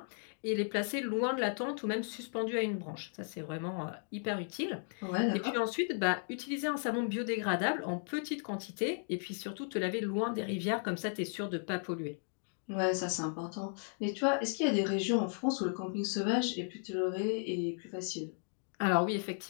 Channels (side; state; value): right; silent; 54 dB below the other